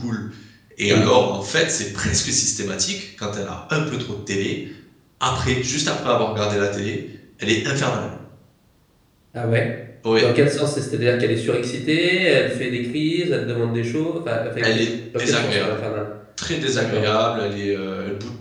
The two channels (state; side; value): identical; both; correlation 1.00